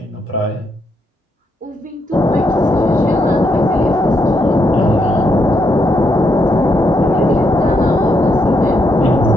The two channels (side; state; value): both; normal; correlation 0.78